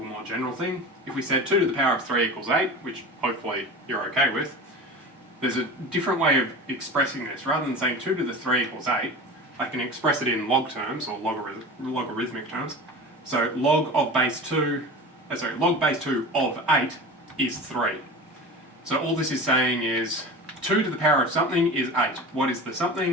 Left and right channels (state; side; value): normal; both; correlation 0.32